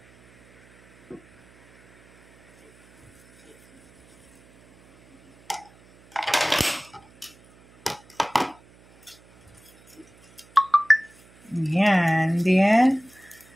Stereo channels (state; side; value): noise; right; hum, 28 dB below the sound